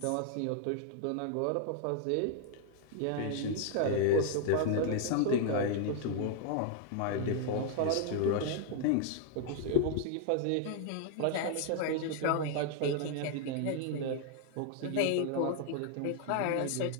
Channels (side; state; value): both; different; correlation 0.00